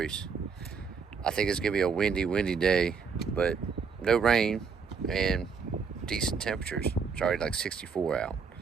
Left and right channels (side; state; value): left; quieter; 5.7 dB